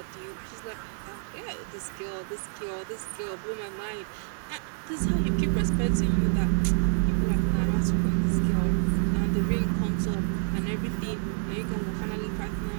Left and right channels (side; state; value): left; silent; 59 dB below the other